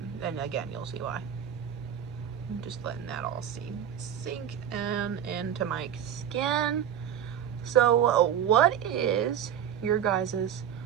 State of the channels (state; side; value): quieter; left; 9.4 dB